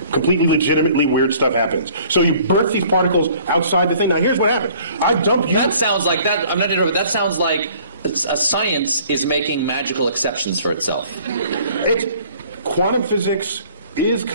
Completely legitimately weird stuff happens. So you birth these particles outside the thing. Now here's what happened. I dump you. That sounds like that. I'm not interrupting. That sounds like science is making magical exceptions for itself. Quantum physics is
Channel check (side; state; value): both; inverted; correlation -0.54